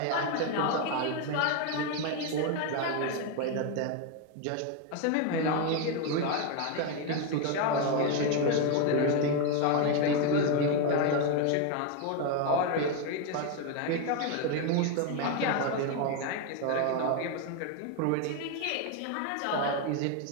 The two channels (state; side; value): different; both; correlation 0.02